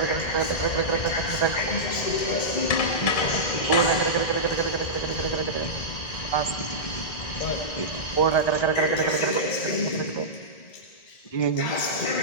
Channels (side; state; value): right; late; 1.8 ms